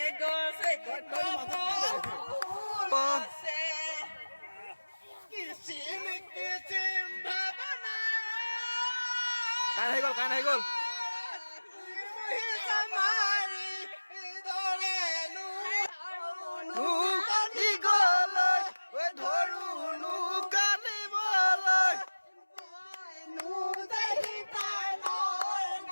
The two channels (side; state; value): both; inverted; correlation -1.00